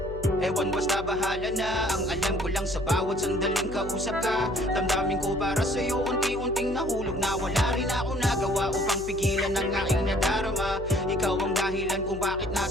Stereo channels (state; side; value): noise; left; hum, 11 dB below the sound